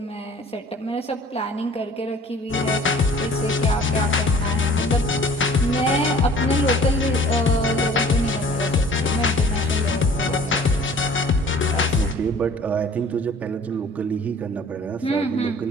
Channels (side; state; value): both; normal; correlation 0.49